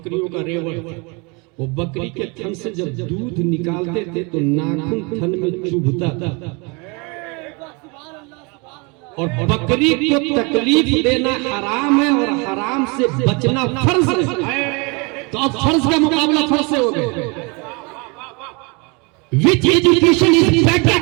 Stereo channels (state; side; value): quieter; left; 30.0 dB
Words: का रेवड़ था। वो बकरी के थन से जब दूध निकालते थे तो नाखून थन में चुभता था, और बकरी को तकलीफ देना हराम है और हराम से बचना फर्ज है। तो अब फर्ज का मुकाबला फर्ज से हो गया। विच एजुकेशन इज बेटर?